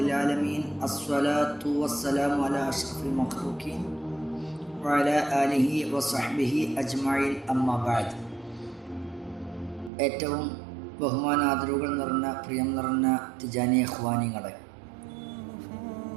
alamin. Assalatu wassalamu ala asyrafil makhluqin wa ala alihi wa sahbihi ajma'in. Amma ba'd. ഏറ്റവും ബഹുമാനാദരവുകൾ നിറഞ്ഞ പ്രിയം നിറഞ്ഞ തിജാനി ഇഖ്വാനികളെ,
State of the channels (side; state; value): left; drops out; at 9.9 s